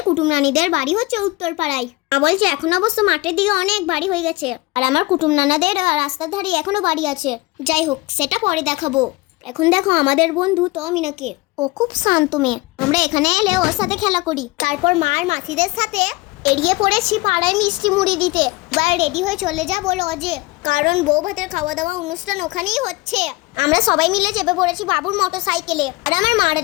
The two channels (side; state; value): right; quieter; 23.0 dB